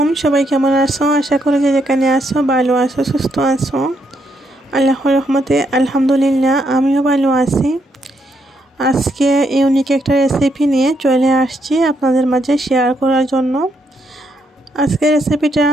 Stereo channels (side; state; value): both; normal; correlation 0.77